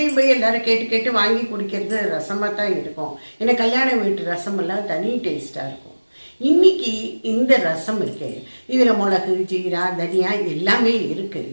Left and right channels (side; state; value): both; inverted; correlation -1.00